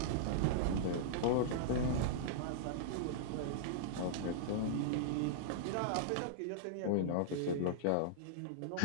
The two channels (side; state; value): both; different; correlation -0.02